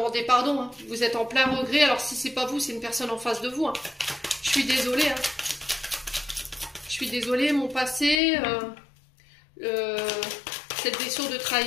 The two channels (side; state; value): right; drops out; at 8.2 s